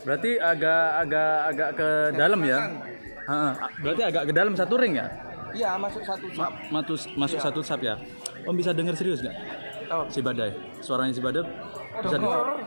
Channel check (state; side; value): inverted; both; correlation -1.00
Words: Berarti agak ke dalam ya. Berarti agak ke dalam satu ring ya? Iya masuk satu sap. Masuk satu sap ya. Om bisa dengar serius nggak? Oh. Si Badai. Suaranya si Badai bisa Dengar.